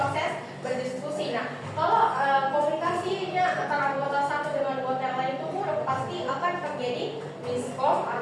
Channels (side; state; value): both; identical; correlation 1.00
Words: berdiskusi. Nah, kalau komunikasinya antara anggota satu dengan anggota yang lain itu buruk, pasti akan terjadi miskom